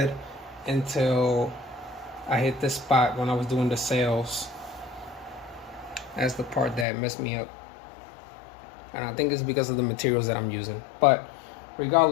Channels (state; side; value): drops out; right; at 6.9 s